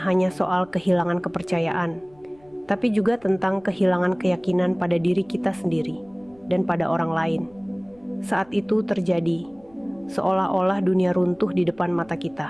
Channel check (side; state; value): left; noise; rumble, 30 dB below the sound